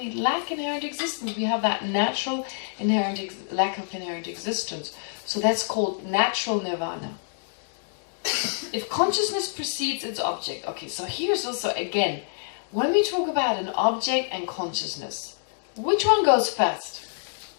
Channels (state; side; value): silent; right; digital silence